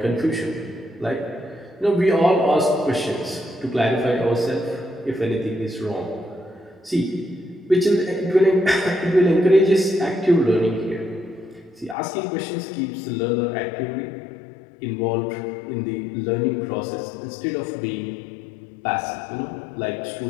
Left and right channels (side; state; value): right; drops out; at 12.0 s